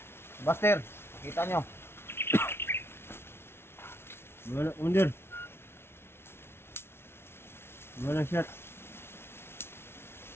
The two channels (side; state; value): right; late; 0.12 ms